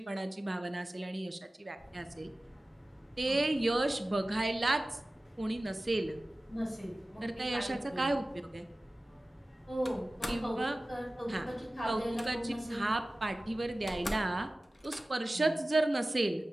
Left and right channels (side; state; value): both; normal; correlation 0.97